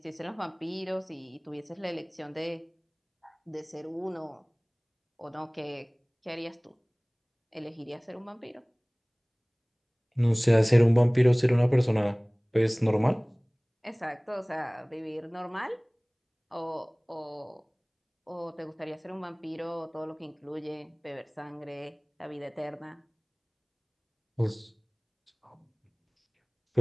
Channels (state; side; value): identical; both; correlation 1.00